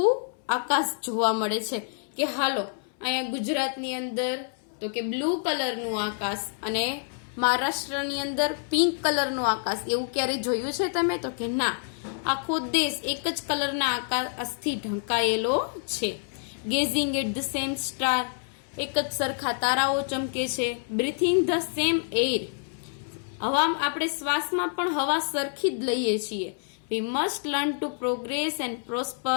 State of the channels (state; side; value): silent; right; 60 dB below the other